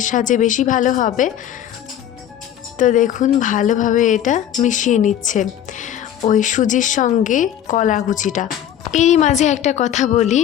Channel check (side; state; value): right; quieter; 10.6 dB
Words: সাহায্যে বেশি ভালো হবে। তো দেখুন ভালোভাবে এটা মিশিয়ে নিচ্ছে ওই সুজির সঙ্গে কলা কুচিটা। এরই মাঝে একটা কথা বলি,